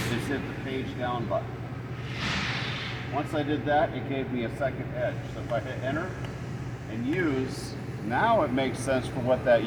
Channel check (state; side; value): identical; both; correlation 1.00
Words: is hit the page down button. Once I did that, it gave me a second edge. So if I hit enter and use, now it makes sense for what that